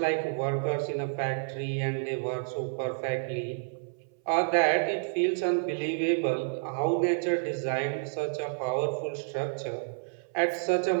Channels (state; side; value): silent; left; 58 dB below the other